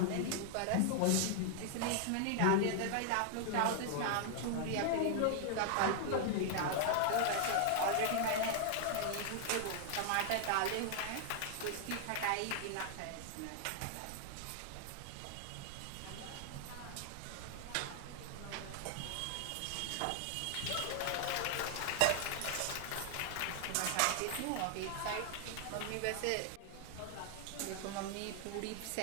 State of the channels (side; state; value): both; different; correlation 0.00